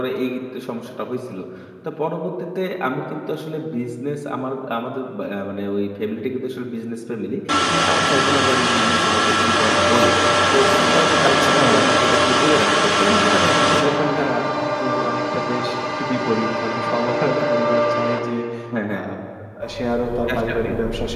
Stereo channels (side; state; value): both; identical; correlation 1.00